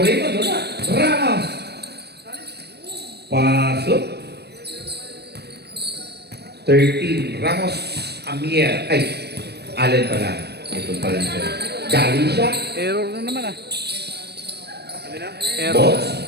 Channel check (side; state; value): left; late; 0.47 ms